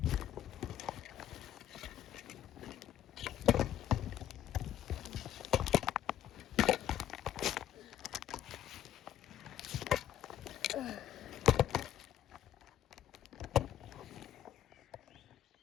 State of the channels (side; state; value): right; quieter; 11.3 dB